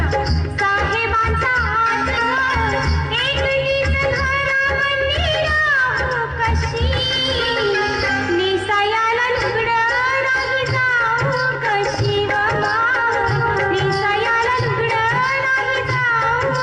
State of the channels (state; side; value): identical; both; correlation 1.00